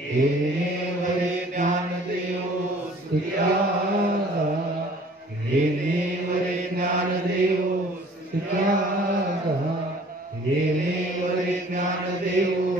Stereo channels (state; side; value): normal; both; correlation 0.53